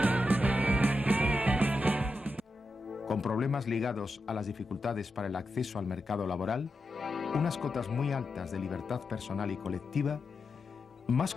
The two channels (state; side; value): normal; both; correlation 0.88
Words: Con problemas ligados a las dificultades para el acceso al mercado laboral, unas cotas muy altas de libertad personal y colectiva, más